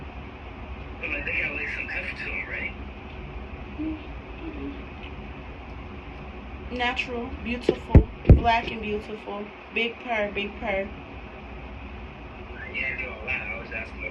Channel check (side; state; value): both; identical; correlation 1.00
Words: But like, they got like some heft to them, right? Natural, beautiful, black and beautiful. Big purr, big purr. You ain't doing a lot. I was asking